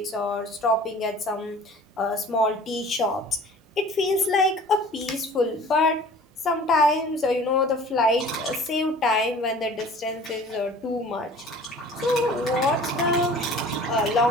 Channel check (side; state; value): both; normal; correlation 0.46